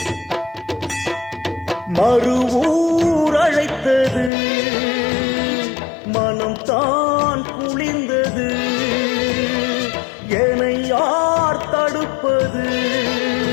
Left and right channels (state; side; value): drops out; right; at 4.3 s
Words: மறுவூர் அழைத்தது, மனம் தான் குளிர்ந்தது. என்னை யார் தடுப்பது,